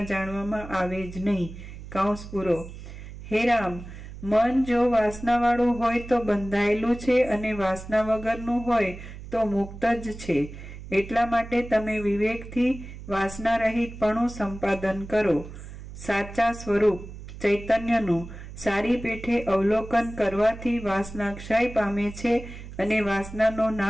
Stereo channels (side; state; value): right; noise; hum, 13 dB below the sound